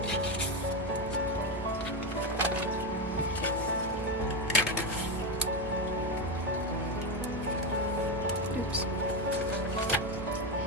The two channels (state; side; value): normal; both; correlation 0.11